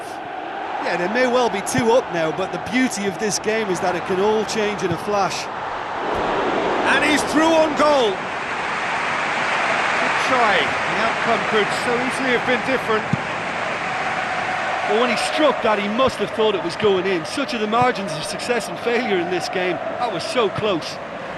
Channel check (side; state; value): both; identical; correlation 1.00